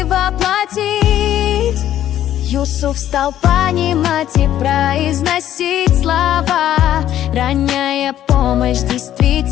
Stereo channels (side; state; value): right; quieter; 11.8 dB